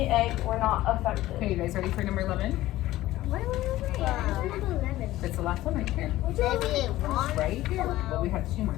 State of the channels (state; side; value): quieter; right; 16.0 dB